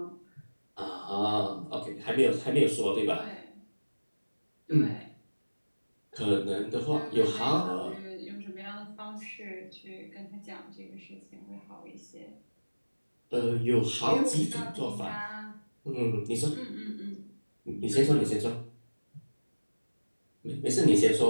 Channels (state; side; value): inverted; both; correlation -1.00